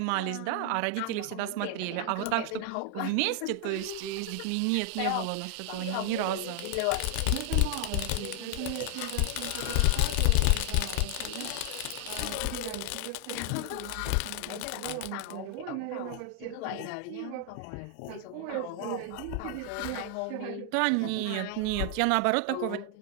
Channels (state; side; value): different; both; correlation 0.00